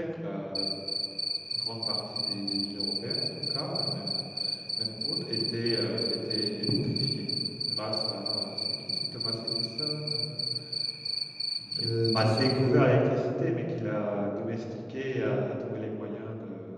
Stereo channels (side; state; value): both; identical; correlation 1.00